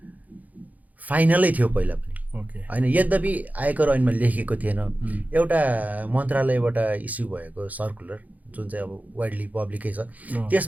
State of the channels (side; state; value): left; late; 0.078 ms